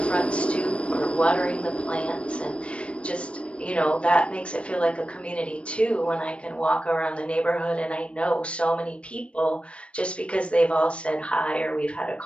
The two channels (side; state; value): right; late; 0.060 ms